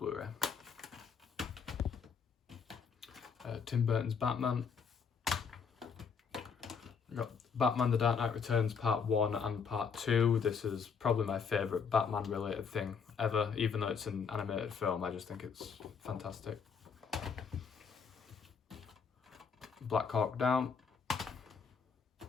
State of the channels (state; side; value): quieter; right; 6.1 dB